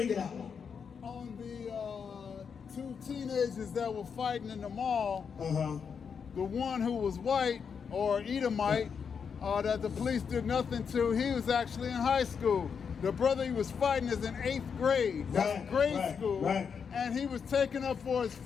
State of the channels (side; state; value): right; quieter; 6.5 dB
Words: it out. On the two teenagers that were fighting in the mall, the one who was white or Edomite that the police did nothing to, he was actually in high school. The brother he was fighting is in 8th grade. That's grade school. And he was taking up for his